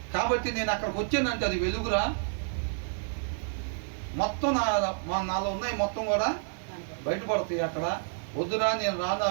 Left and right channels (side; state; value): left; silent; digital silence